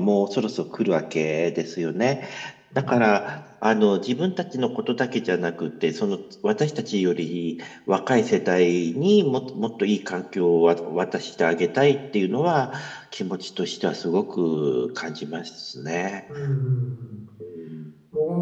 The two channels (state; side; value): identical; both; correlation 1.00